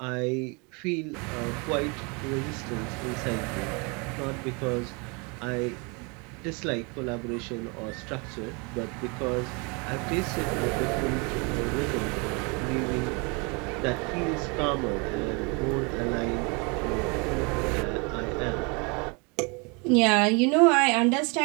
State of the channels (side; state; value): left; quieter; 31.4 dB